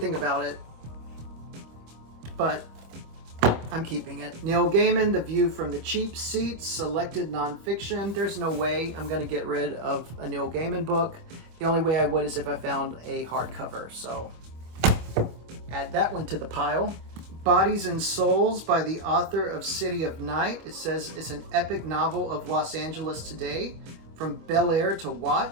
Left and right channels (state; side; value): late; left; 25 ms